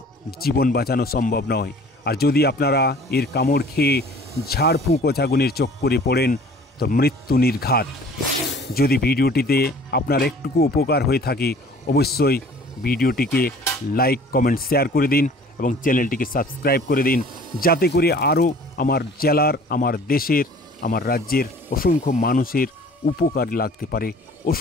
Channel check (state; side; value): normal; both; correlation 0.49